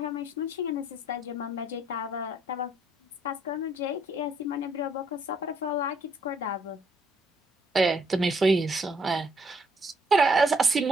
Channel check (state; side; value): normal; both; correlation 0.68